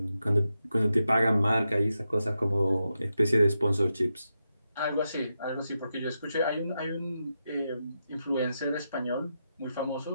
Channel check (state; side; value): inverted; both; correlation -0.87